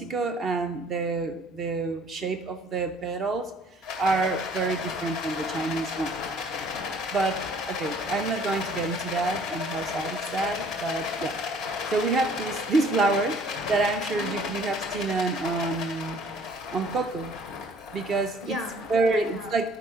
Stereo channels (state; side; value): normal; both; correlation 0.55